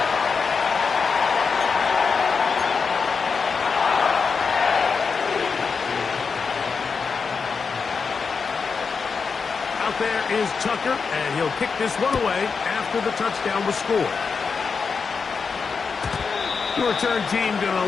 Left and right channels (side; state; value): right; quieter; 5.3 dB